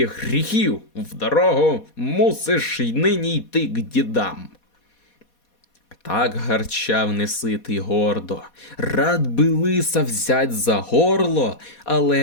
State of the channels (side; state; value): right; late; 4.2 ms